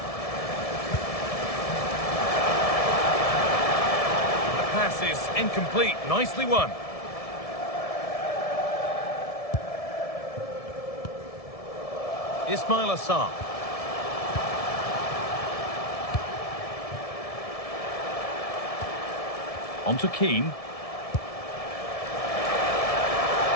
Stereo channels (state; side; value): late; right; 1.7 ms